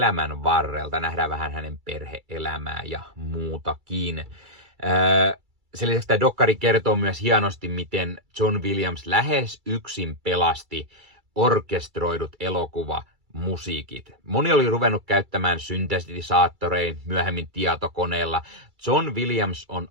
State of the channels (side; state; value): left; late; 2.3 ms